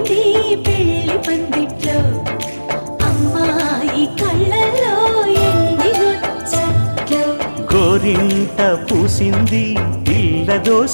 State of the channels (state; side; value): inverted; both; correlation -1.00